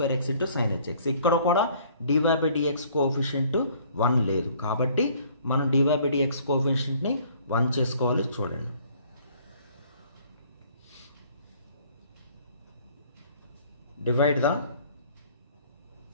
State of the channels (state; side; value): inverted; both; correlation -0.57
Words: x into sin hx. ఇక్కడ కూడా dy by dx కోఎఫిషియంట్ 1 లేదు కాబట్టి మనం dy by dx కోఎఫిషియంట్ని 1 చేసుకోవాలి. చూడండి, divide the